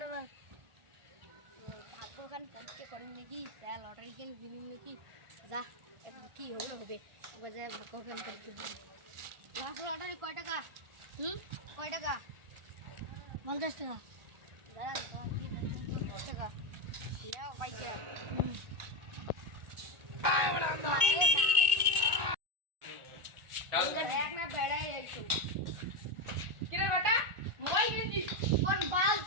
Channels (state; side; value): late; left; 1.4 ms